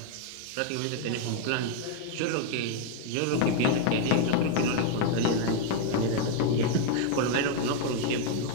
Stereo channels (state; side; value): different; both; correlation 0.00